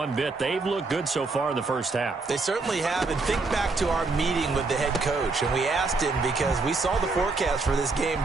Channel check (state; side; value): quieter; left; 3.8 dB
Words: bit. They've looked good so far in the first half. They certainly have. And think back to our meeting with the head coach. And we asked him because we saw the forecast for this game,